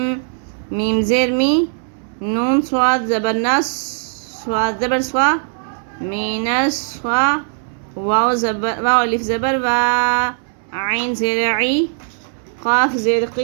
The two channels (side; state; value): left; silent; 67 dB below the other